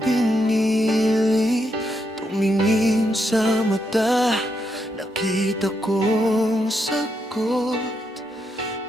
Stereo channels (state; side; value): normal; both; correlation 0.81